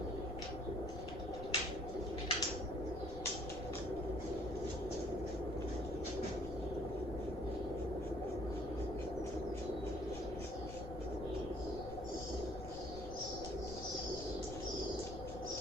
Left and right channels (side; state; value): left; noise; rumble, 9 dB below the sound